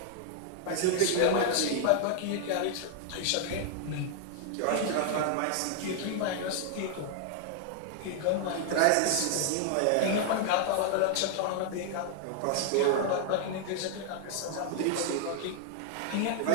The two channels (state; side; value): different; both; correlation 0.00